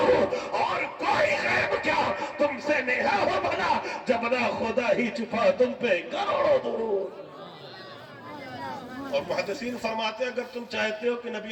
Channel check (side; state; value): both; identical; correlation 1.00